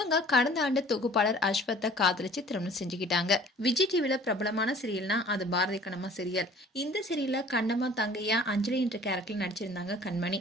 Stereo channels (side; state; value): both; normal; correlation 0.50